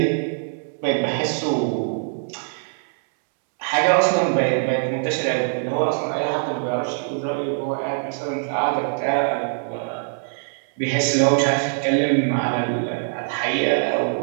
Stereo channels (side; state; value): left; silent; 64 dB below the other